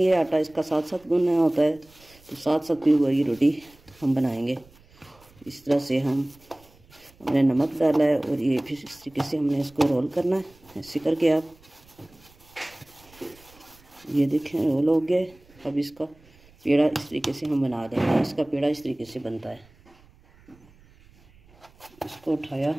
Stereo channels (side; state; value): right; noise; rumble, 28 dB below the sound